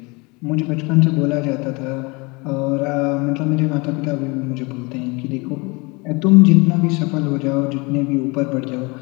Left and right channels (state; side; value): quieter; right; 27.1 dB